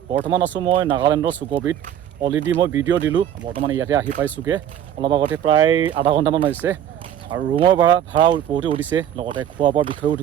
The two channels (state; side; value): quieter; left; 10.4 dB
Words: বৰ্তমান আছোঁ মই নাগালেণ্ডৰ চুকবিত অলৰেডি মই ভিডিঅ' দিলোঁ বৰ্তমান ইয়াতে আহি পাইছোঁগৈ অলপ আগতে প্ৰায় আধা ঘণ্টামান হৈছে আৰু ৰুমৰ ভাড়া বহুতে উঠিছে লগতে খোৱা বোৱাৰ বিষয়েও